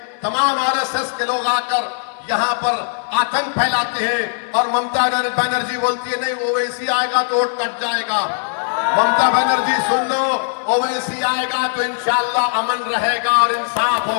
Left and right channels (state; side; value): silent; right; 62 dB below the other